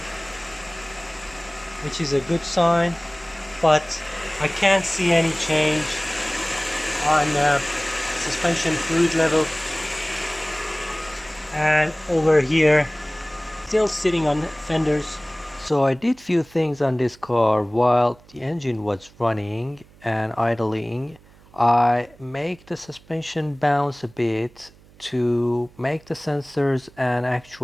which is a good sign, but I can't see any change on suspension fluid level. And over here, still sitting on fenders. So I did few things on this car while the engine was running and idling. I make the suspension bounce a bit to make the sensors and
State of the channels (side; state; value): right; noise; hum, 26 dB below the sound